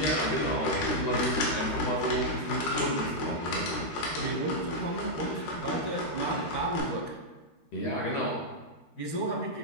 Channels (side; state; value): right; late; 13 ms